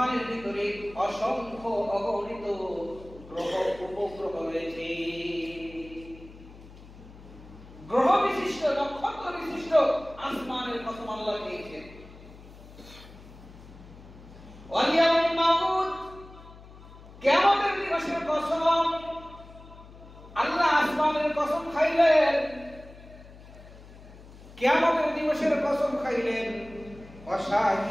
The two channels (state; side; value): noise; left; hum, 19 dB below the sound